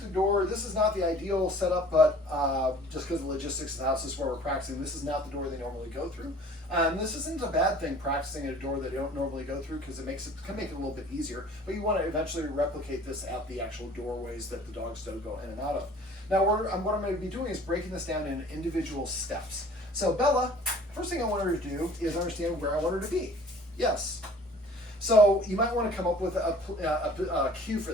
a door. This is not the ideal setup, but just because of the logistics of the house, this is where we're practicing. This is not the door they normally go through. This isn't a bad thing, practicing at a door that they don't normally go through, because it can make it a little bit easier. But you want to eventually replicate this at the actual doorways that the dogs don't go in and out of. Now what I'm going to be doing is breaking this down in individual steps. So Bella, first thing I want her to do is understand where I want her to be. Yes. So you might want to come up with a cue for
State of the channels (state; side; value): normal; both; correlation 0.49